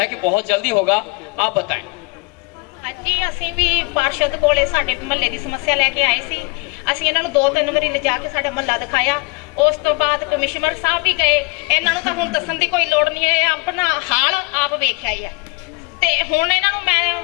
कि बहुत जल्दी होगा, आप बताएं। जी, ਅਸੀਂ ਵੀ ਪਾਰਸ਼ਦ ਕੋਲੇ ਸਾਡੇ ਮਹੱਲੇ ਦੀ ਸਮੱਸਿਆ ਲੈ ਕੇ ਆਏ ਸੀ। ਅਸੀਂ ਇਹਨਾਂ ਨੂੰ 2-3 ਵਾਰੀ ਲਿਜਾ ਕੇ ਸਾਡਾ ਮਹੱਲਾ ਦਿਖਾਇਆ। ਉਸ ਤੋਂ ਬਾਅਦ ਕਮਿਸ਼ਨਰ ਸਾਹਿਬ ਵੀ ਗਏ। ਇਹਨਾਂ ਨੂੰ ਤਾਂ ਹੁਣ ਦੱਸਣ ਦੀ ਕੋਈ ਲੋੜ ਨਹੀਂ ਹੈ, ਆਪਣਾ ਹਾਲ ਆਪ ਵੇਖਿਆ ਹੀ ਆ। ਤੇ ਹੁਣ ਇਹਨਾਂ ਨੂੰ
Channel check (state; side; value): quieter; right; 29.0 dB